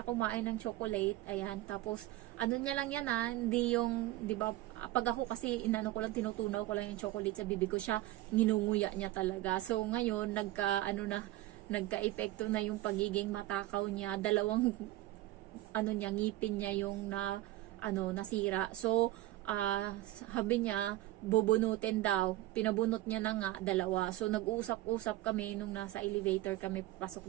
kumain ng chocolate, ayan, tapos, niya lang yan hindi yung, di ba, pag ako kasi, tinutunaw ko lang yung chocolate sa bibig ko, siya, nginunguya niya talaga. So, ngayon, nagka-epekto na yung pagiging matakaw niya, dalawang, ngipin niya yung nasira. So, sabi niya, bubunutin daw. Pinabunot niya na nga, dalawa. So, nag-uusap-usap kami nung nasa elevator kami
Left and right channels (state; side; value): quieter; left; 16.4 dB